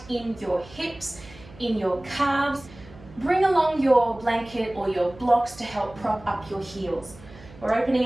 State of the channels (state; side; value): noise; right; hum, 20 dB below the sound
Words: in your hips, in your calves, bring along your blanket or your blocks to help prop up your heels. We're